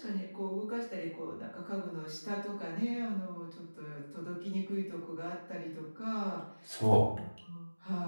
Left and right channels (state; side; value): inverted; both; correlation -1.00